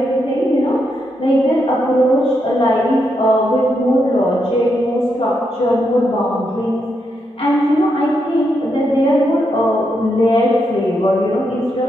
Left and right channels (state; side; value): normal; both; correlation 0.81